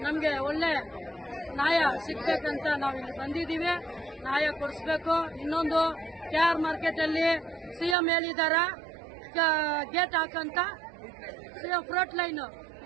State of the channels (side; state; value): left; drops out; at 8.0 s